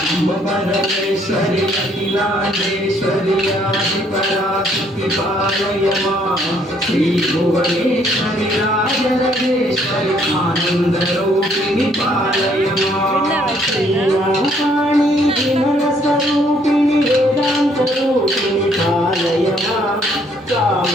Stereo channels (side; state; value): both; normal; correlation 0.66